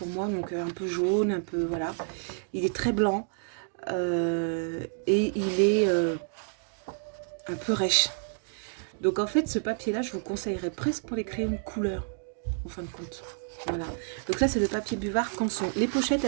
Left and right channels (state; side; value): silent; left; digital silence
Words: moi. Donc, un peu jaune, un peu... Voilà. Il est très blanc. Et il est un peu rêche. Donc, en fait, ce papier-là, je vous conseillerais presque pour les crayons de couleur, en fin de compte. Voilà. Donc là, c'est le papier buvard Canson. Les pochettes,